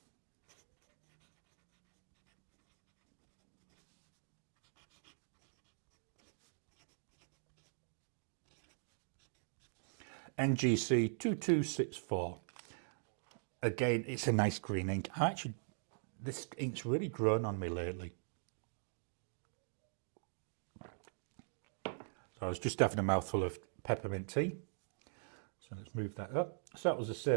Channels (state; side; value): silent; left; digital silence